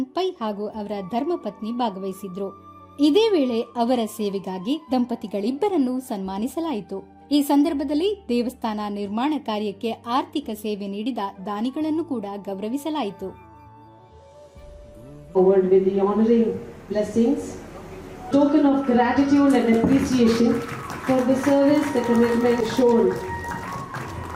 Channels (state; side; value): identical; both; correlation 1.00